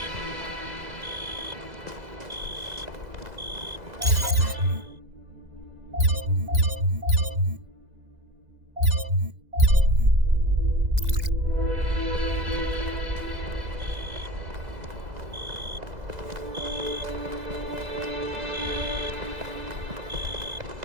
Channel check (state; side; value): late; left; 2.0 ms